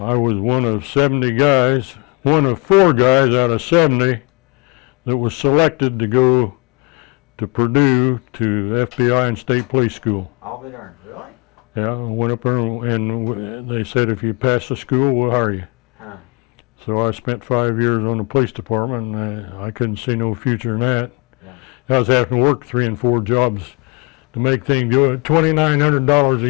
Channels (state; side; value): quieter; right; 29.9 dB